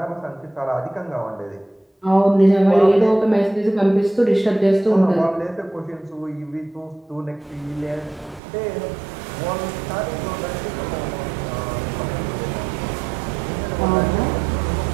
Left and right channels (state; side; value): drops out; left; at 8.4 s